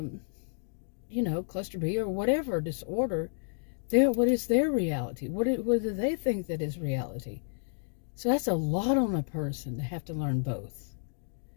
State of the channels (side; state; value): right; silent; digital silence